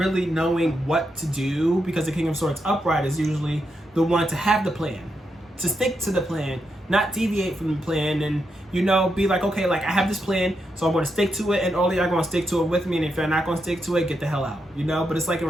knowing what to do, because the King of Swords upright is usually the one to have the plan, to stick to the plan, not deviate from the plan, and you know, be like, okay, like I have this plan, so I'm going to stick to it, and all of y'all going to stick to it with me, and if you're not going to stick to it, get the hell out, you know. But it's like in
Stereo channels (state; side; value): normal; both; correlation 0.83